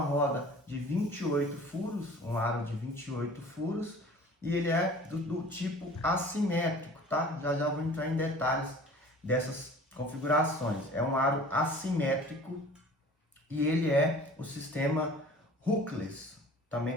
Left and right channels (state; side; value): normal; both; correlation 0.45